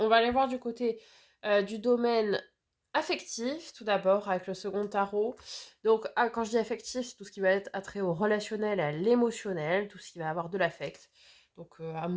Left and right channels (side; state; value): both; identical; correlation 1.00